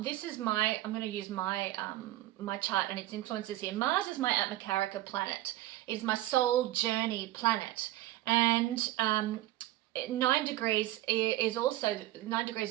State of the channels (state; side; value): quieter; left; 15.7 dB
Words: is I'm going to use my my chart and its influences here. Mars is my Atmakarika planet. It is my soul journey planet. And 9 degrees is also